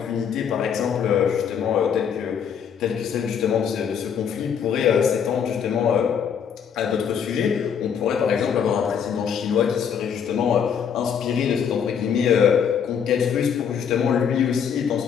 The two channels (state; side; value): quieter; right; 7.6 dB